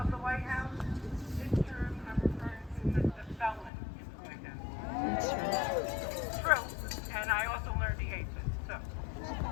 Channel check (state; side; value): drops out; right; at 3.7 s